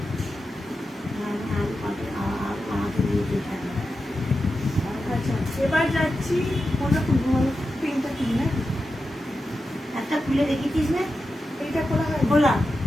আচ্ছা এবার যাচ্ছি কোনটা খুলবো বলো? পিঙ্কটা খুলি না? একটা খুলে রেখেছিস না? এইটা খোলা হয়? খোলা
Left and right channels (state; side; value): normal; both; correlation 0.90